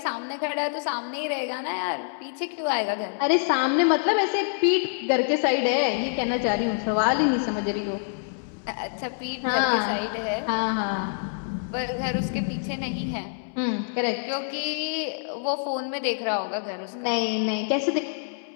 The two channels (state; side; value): silent; right; digital silence